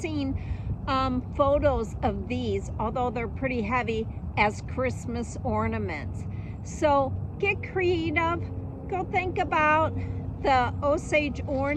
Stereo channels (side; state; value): both; identical; correlation 1.00